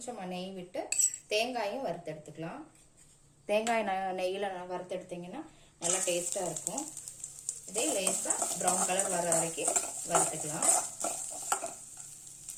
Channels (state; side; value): identical; both; correlation 1.00